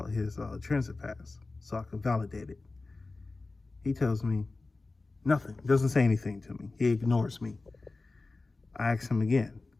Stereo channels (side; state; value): right; quieter; 3.5 dB